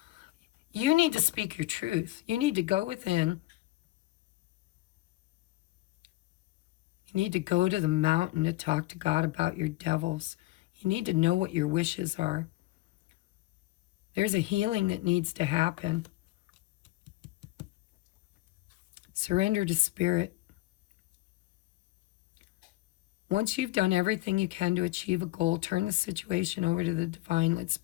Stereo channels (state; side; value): quieter; right; 18.5 dB